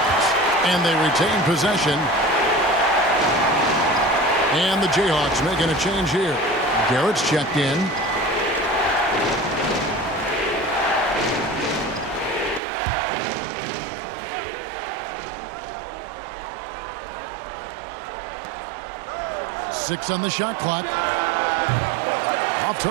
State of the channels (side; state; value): left; drops out; at 12.6 s